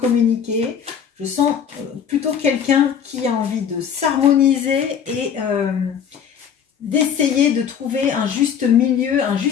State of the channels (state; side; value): quieter; right; 7.9 dB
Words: Je sens plutôt quelqu'un qui a envie de s'harmoniser et d'essayer de trouver un juste milieu, un